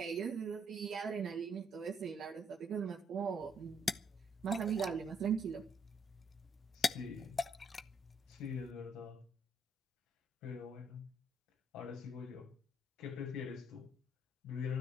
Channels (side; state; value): both; normal; correlation 0.71